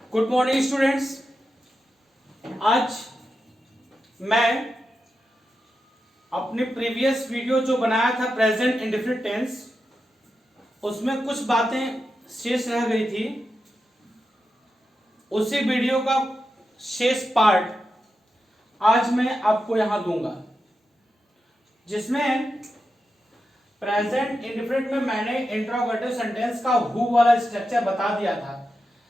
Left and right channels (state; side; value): normal; both; correlation 0.89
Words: Good morning students. आज मैं अपनी प्रीवियस वीडियो जो बनाया था प्रेजेंट इंडेफिनिट टेंस, उसमें कुछ बातें शेष रह गई थी। उसी वीडियो का शेष पार्ट आज मैं आपको यहां दूंगा, जिसमें प्रेजेंट इंडेफिनिट में मैंने इंट्रोगेटिव सेंटेंस का हु वाला स्ट्रक्चर बता दिया था